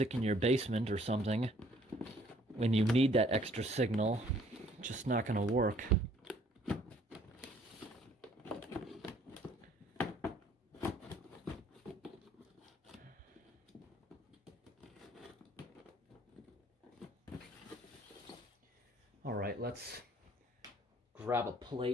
in your basement or something, when you need that extra signal, it's just not going to work. All right, let's grab grab a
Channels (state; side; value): normal; both; correlation 0.60